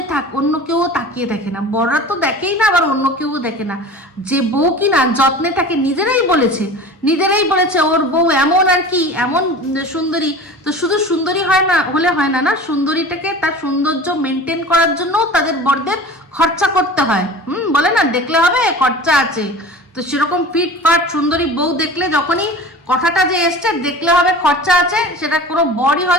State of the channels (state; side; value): normal; both; correlation 0.38